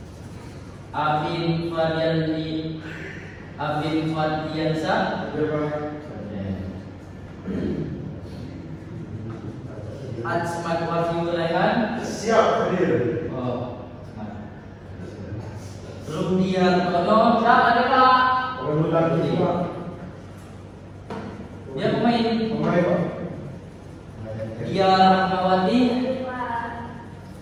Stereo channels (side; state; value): both; identical; correlation 1.00